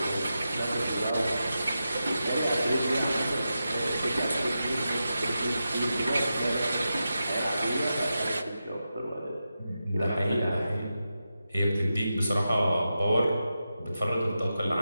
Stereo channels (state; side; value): inverted; both; correlation -0.90